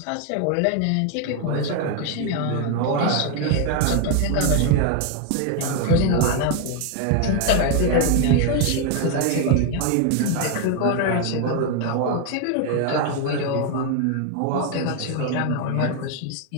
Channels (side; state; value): both; different; correlation 0.01